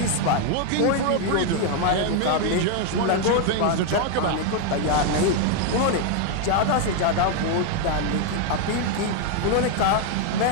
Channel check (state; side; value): different; both; correlation 0.01